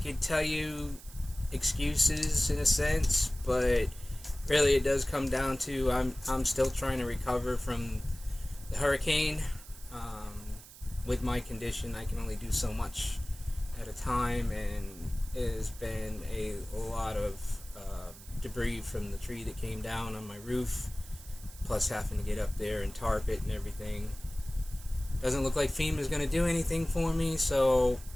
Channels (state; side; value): noise; right; hiss, 18 dB below the sound